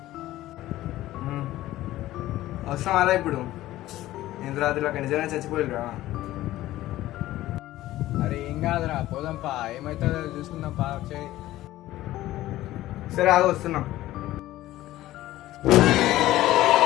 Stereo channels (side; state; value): right; quieter; 15.5 dB